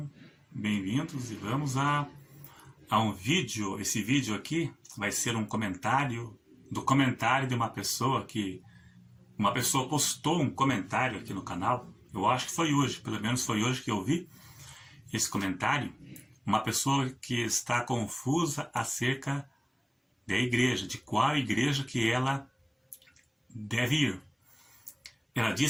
bem-vindos e vamos a um vídeo. Esse vídeo aqui vai ser um comentário do comentário de uma pessoa postou um comentário aqui no canal. Eu acho que foi hoje, pelo menos foi hoje que eu vi esse comentário. Uma pessoa que está confusa acerca da igreja, de qual igreja que ela deve ir. Ela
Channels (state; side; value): identical; both; correlation 1.00